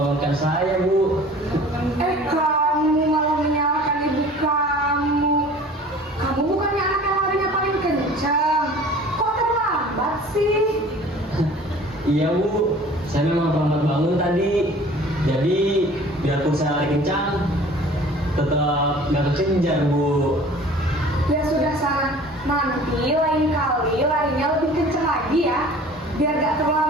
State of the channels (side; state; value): both; normal; correlation 0.46